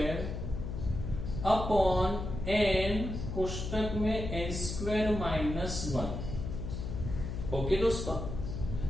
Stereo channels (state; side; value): noise; left; hum, 5 dB below the sound